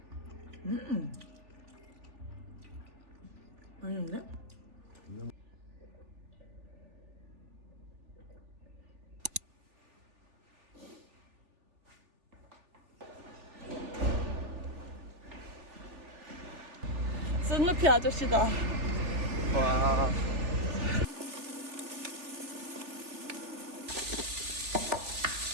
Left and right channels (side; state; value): left; late; 3.4 ms